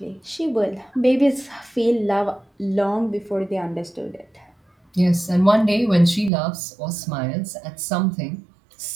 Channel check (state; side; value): drops out; left; at 6.3 s